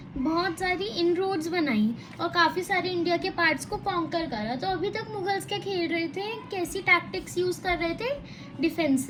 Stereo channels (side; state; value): both; identical; correlation 1.00